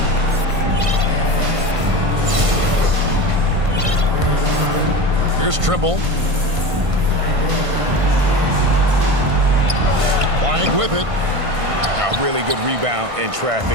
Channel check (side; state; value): left; late; 1.5 ms